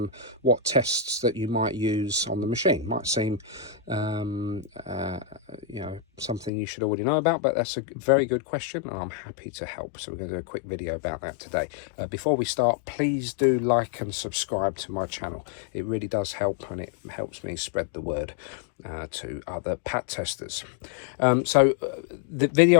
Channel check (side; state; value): right; drops out; at 6.5 s